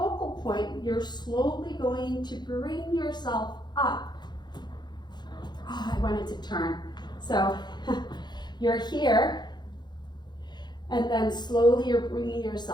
point, you're slowly going to bring yourself up. Oh, I wanted to turn. So you're here, and then slowly you're bringing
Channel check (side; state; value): right; late; 0.21 ms